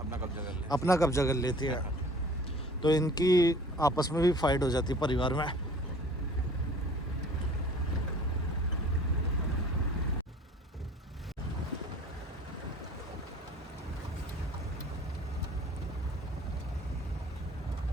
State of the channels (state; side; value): normal; both; correlation 0.49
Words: अपना कब्जा कर लेती है। तो इनकी आपस में भी फाइट हो जाती है परिवार में।